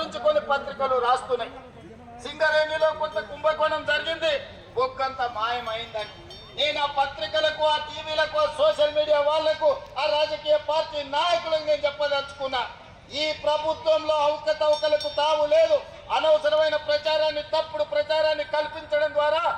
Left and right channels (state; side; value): identical; both; correlation 1.00